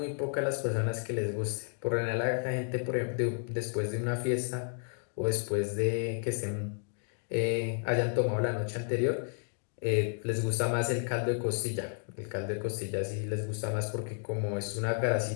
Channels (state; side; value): silent; right; 56 dB below the other